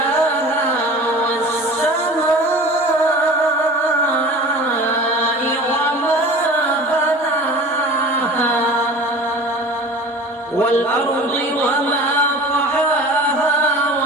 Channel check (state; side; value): normal; both; correlation 0.39